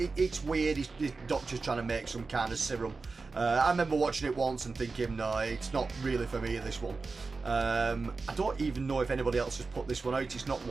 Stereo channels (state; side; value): quieter; left; 4.1 dB